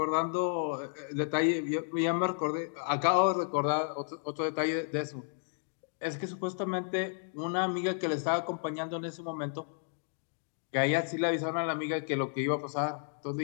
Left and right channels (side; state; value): right; silent; digital silence